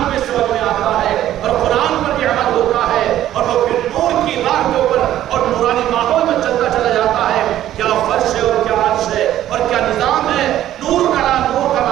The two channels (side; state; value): left; quieter; 12.6 dB